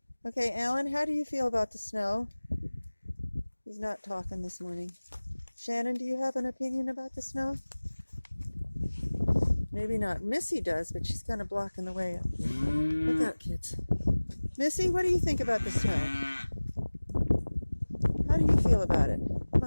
Okay, Alan, how do you feel about the snow? He's not talking this morning. Shannon, do you have an opinion about the snow? Maybe not. Missy does, but she's kind of blocking the way. Look out, kids. Missy, what do you think about the snow? How do you feel about it? Come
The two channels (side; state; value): both; inverted; correlation -1.00